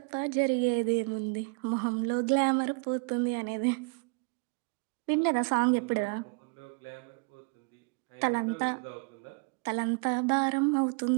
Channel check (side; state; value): left; quieter; 34.0 dB